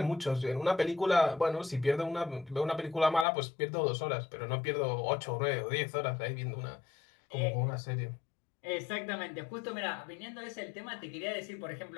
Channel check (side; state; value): right; drops out; at 3.2 s